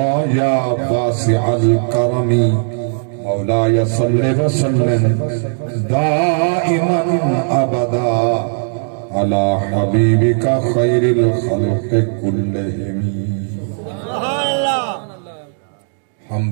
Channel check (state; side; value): silent; left; digital silence